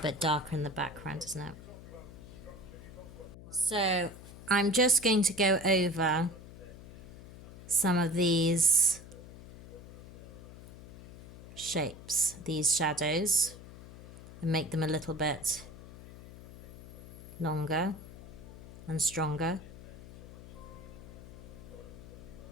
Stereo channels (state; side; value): noise; left; hum, 15 dB below the sound